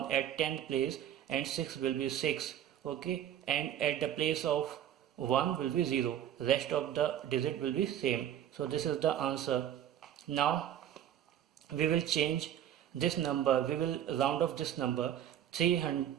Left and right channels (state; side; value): quieter; left; 10.7 dB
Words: at 10th place, and 6 will be 6. Okay, and at the place of 1 will be 0. Rest of the digit will be same. So this is the answer. Now we will change this number, we will round off this number